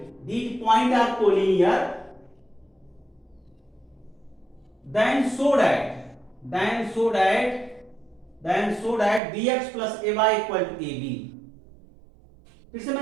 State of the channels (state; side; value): drops out; left; at 9.2 s